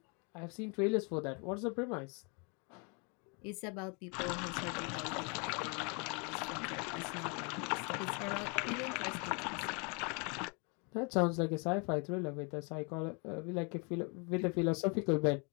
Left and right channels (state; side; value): quieter; right; 34.2 dB